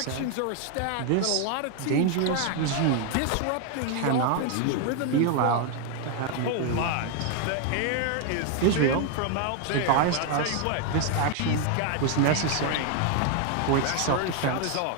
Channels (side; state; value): both; different; correlation 0.00